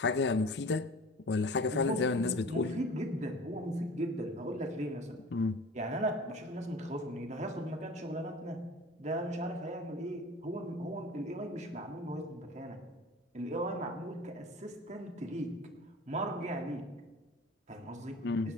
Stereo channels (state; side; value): normal; both; correlation 0.41